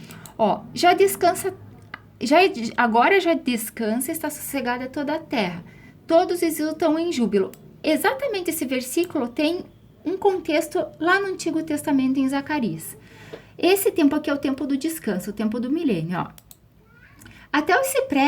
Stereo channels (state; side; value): identical; both; correlation 1.00